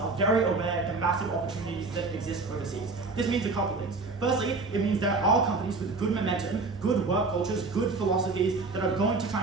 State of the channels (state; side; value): quieter; left; 3.8 dB